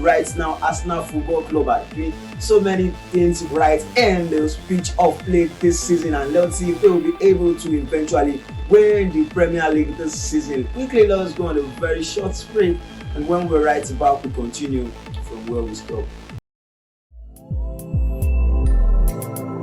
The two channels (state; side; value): identical; both; correlation 1.00